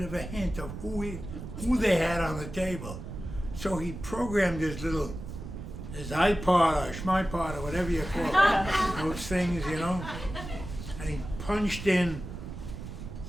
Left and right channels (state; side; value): noise; right; rumble, 9 dB below the sound